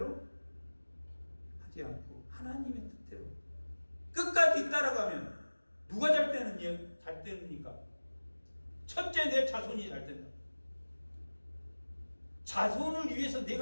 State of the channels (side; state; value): both; inverted; correlation -1.00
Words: 하지 않고 하나님의 뜻대로 끝까지 따라가면 누가 잘 되느니까? 첫째, 내 자손이 잘 된다. 자손을 위해서